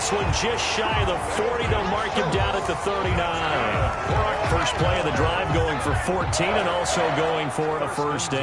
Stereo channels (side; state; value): both; identical; correlation 1.00